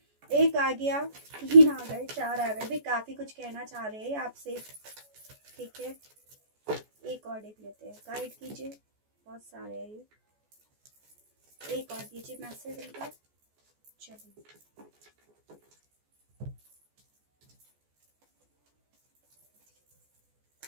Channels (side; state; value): left; late; 14 ms